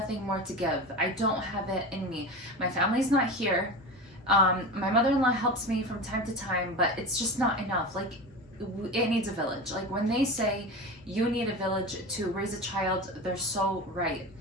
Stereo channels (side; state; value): both; normal; correlation 0.28